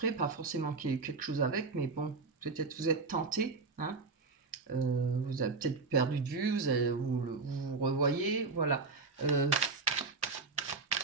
pas forcément qu'il y ait quelque chose avec, mais bon, peut-être vous êtes tenté, hein. Vous avez peut-être perdu de vue, vous revoyez, voilà.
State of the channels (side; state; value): left; quieter; 4.2 dB